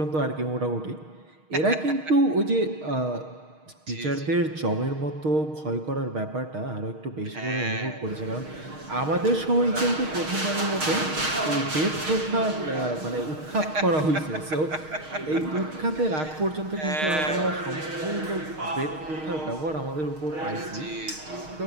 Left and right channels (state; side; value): late; left; 6.4 ms